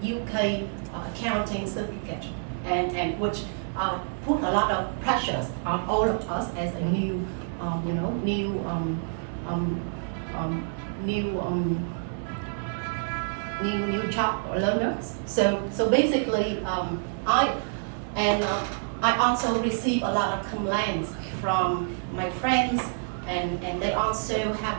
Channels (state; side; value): silent; left; digital silence